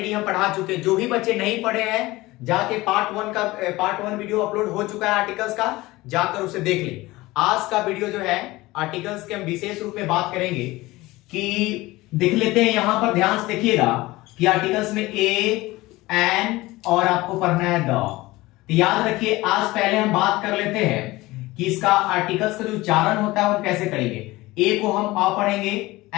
हम पढ़ा चुके। जो भी बच्चे नहीं पढ़े हैं जाके पार्ट वन वीडियो अपलोड हो चुका है आर्टिकल्स का, जाकर उसे देख ले। आज का वीडियो जो है आर्टिकल्स के हम विशेष रूप में बात करेंगे कि देख लेते हैं। यहां पर ध्यान से देखिएगा कि आर्टिकल्स में ए, एन और आपको पढ़ना है द। तो याद रखिए, आज पहले हम बात कर लेते हैं कि इसका आर्टिकल्स का जो उच्चारण होता है वो कैसे करेंगे। ए को हम अ पढ़ेंगे,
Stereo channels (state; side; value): quieter; right; 19.7 dB